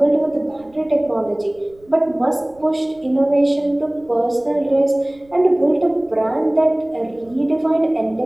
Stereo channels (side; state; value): right; noise; rumble, 30 dB below the sound